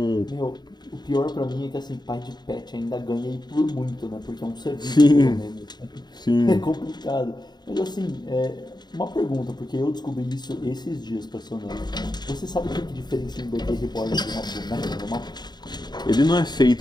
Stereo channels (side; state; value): right; late; 0.20 ms